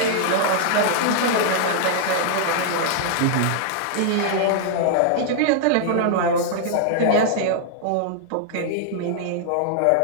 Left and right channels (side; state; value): both; different; correlation -0.01